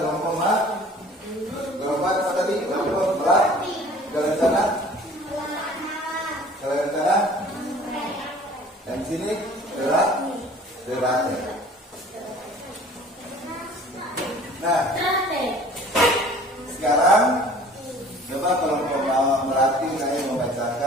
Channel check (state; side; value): normal; both; correlation 0.48